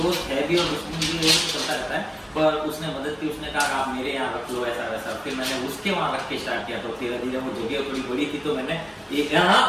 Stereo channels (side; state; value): both; identical; correlation 1.00